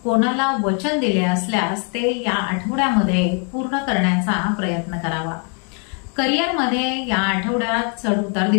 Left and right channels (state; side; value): quieter; right; 39.4 dB